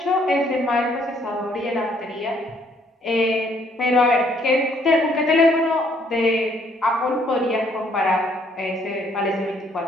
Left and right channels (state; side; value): normal; both; correlation 0.66